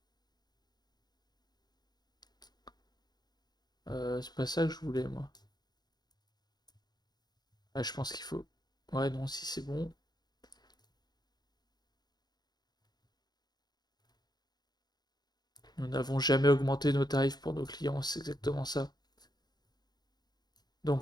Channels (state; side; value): late; right; 0.20 ms